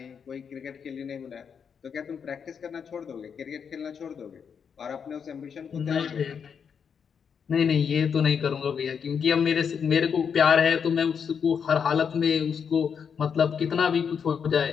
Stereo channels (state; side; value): quieter; right; 6.9 dB